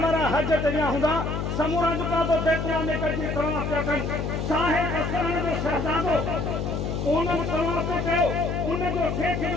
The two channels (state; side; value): noise; left; hum, 2 dB below the sound